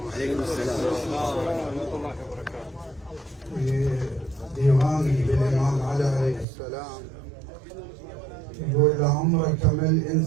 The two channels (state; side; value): drops out; left; at 6.5 s